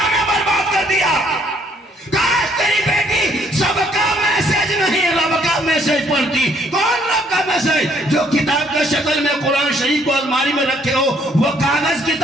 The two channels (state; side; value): normal; both; correlation 0.65